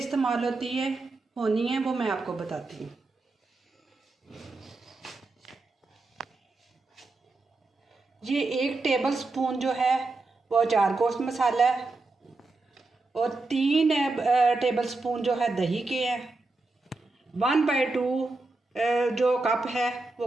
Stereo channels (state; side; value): quieter; left; 3.4 dB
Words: होनी है वो मैं आपको बताती हूँ। ये 1 टेबल स्पून जो है वो अचार गोश्त मसाला है और 3 टेबल स्पून जो है दही के हैं। 1/2 जो कप है वो